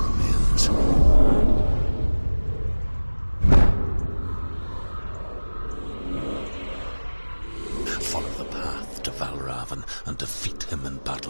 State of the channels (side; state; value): both; inverted; correlation -1.00